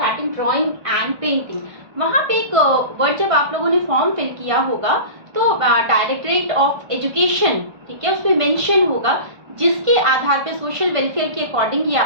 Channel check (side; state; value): left; late; 1.5 ms